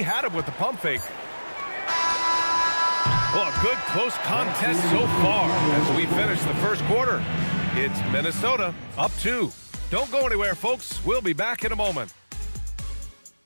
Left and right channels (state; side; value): inverted; both; correlation -1.00